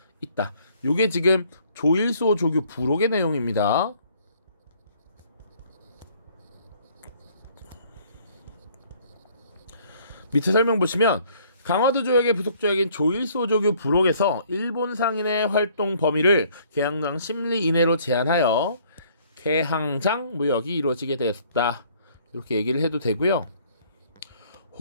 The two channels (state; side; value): inverted; both; correlation -0.60